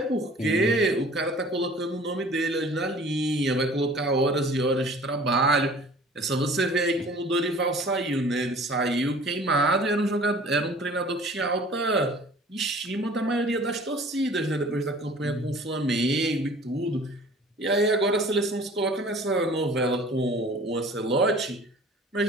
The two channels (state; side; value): normal; both; correlation 0.48